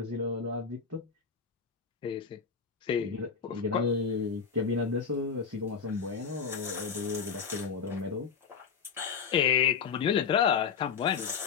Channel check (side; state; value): right; quieter; 6.1 dB